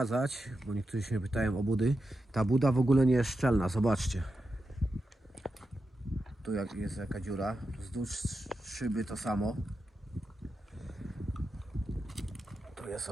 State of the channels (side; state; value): both; normal; correlation 0.89